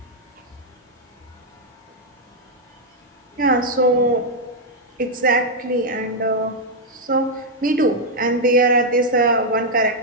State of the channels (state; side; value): normal; both; correlation -0.02